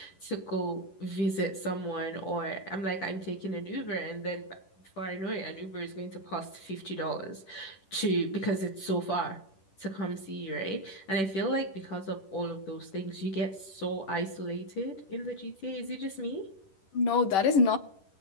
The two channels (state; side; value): late; right; 10 ms